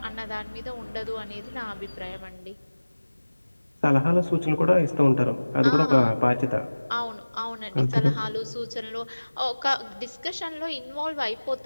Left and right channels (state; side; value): inverted; both; correlation -1.00